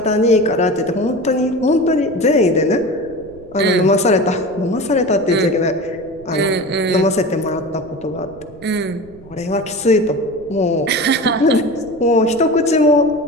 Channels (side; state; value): right; noise; rumble, 22 dB below the sound